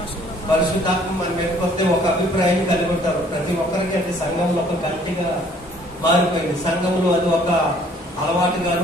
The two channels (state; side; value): normal; both; correlation 0.58